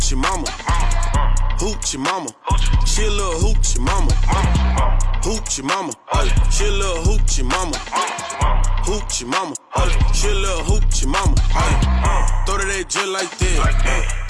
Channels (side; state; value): both; identical; correlation 1.00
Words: mama. Hoochie mama, she a little hoochie mama. Hoochie mama, she a little hoochie mama. Hoochie mama, she a little hoochie mama. Throw to that jet like that,